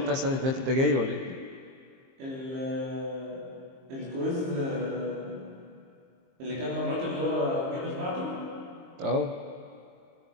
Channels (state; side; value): late; left; 23 ms